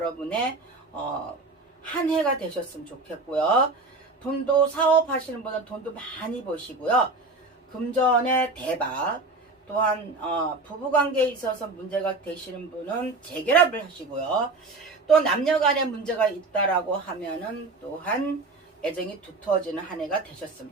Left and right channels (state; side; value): quieter; left; 3.4 dB